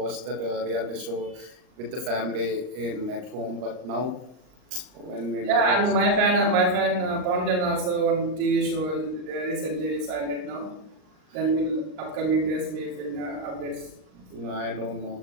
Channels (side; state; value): left; late; 38 ms